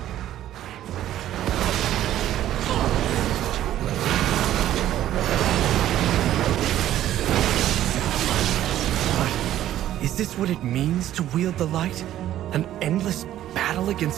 But is this what it means to wield the light? An endless battle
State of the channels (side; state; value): left; quieter; 12.6 dB